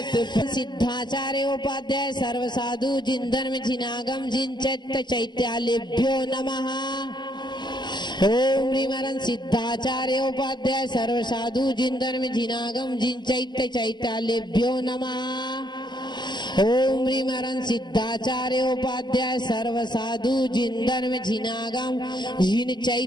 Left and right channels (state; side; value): late; right; 0.21 ms